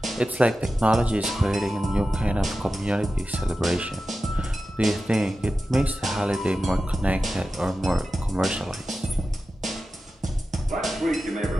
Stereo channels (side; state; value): both; normal; correlation 0.93